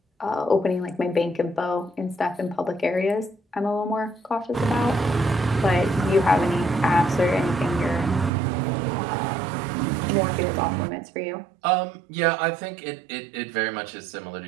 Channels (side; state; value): left; drops out; at 8.3 s